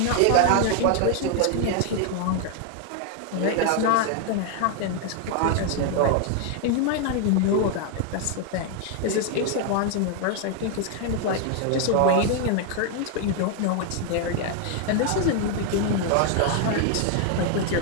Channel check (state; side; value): different; both; correlation 0.00